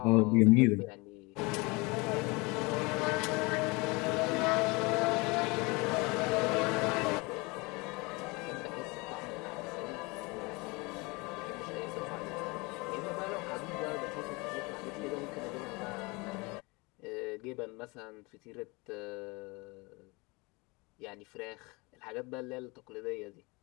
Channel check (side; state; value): right; quieter; 26.2 dB